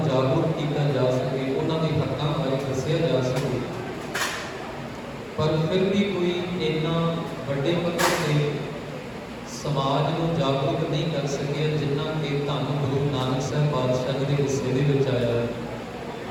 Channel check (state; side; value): identical; both; correlation 1.00